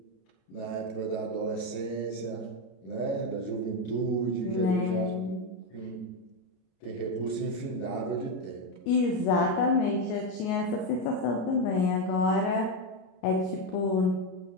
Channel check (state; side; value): late; right; 33 ms